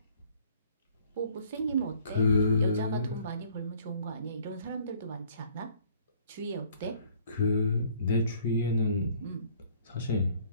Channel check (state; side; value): inverted; both; correlation -0.58